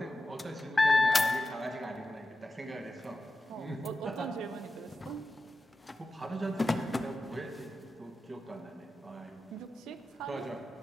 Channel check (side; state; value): both; normal; correlation 0.92